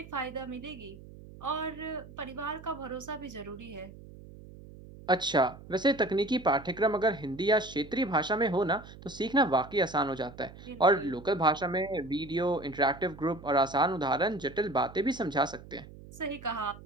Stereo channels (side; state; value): right; noise; hum, 17 dB below the sound